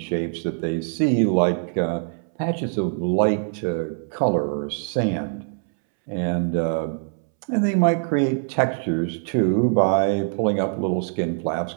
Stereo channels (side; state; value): left; silent; 63 dB below the other